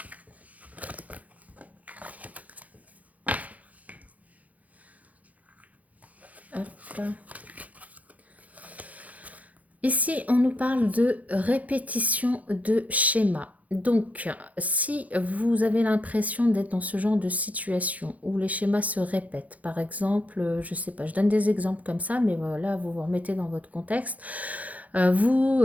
Ici, on nous parle de répétition de schéma. Donc, si vous avez l'impression d'être dans ce genre de situation où les schémas se répètent, par exemple, je ne sais pas, je donne des exemples comme ça, mais voilà, vous vous remettez dans votre contexte. Vous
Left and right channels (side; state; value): left; late; 0.073 ms